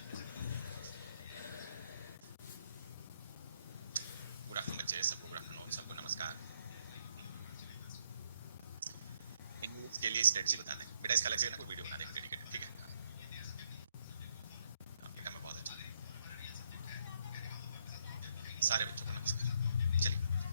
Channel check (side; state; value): both; inverted; correlation -0.72